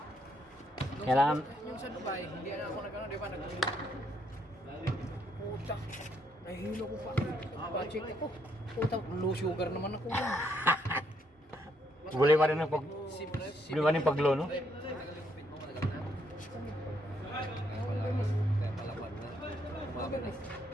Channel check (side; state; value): both; normal; correlation 0.73